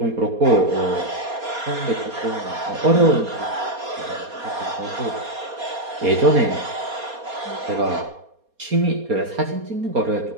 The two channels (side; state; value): left; late; 4.2 ms